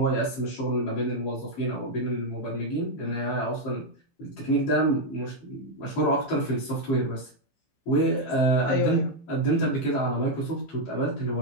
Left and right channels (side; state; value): right; late; 15 ms